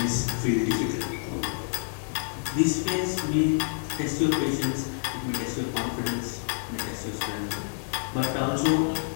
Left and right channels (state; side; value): silent; right; 57 dB below the other